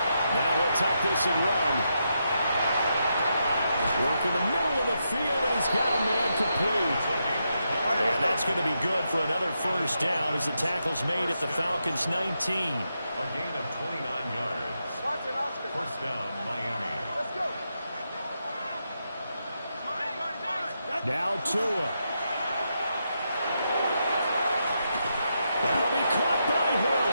Now he'll tuck this and run. Work in the middle of the field, and he's got a man complete. And that's going to be good for another 1st down as the tackle's made at the Falcons' 19. A gain of 29 yards. 1st down, Miami. Now Tua. That'll be caught by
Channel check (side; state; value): both; inverted; correlation -0.83